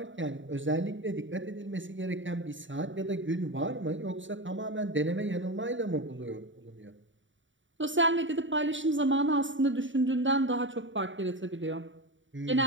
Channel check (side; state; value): left; late; 0.55 ms